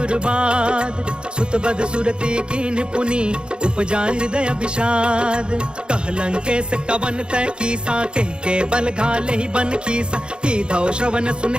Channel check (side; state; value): left; late; 0.052 ms